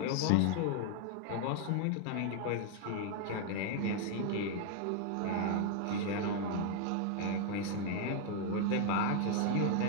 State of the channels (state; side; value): different; both; correlation 0.00